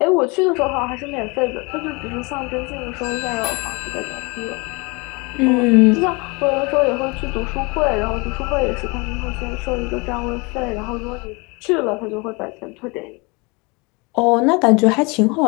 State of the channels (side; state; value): right; quieter; 28.1 dB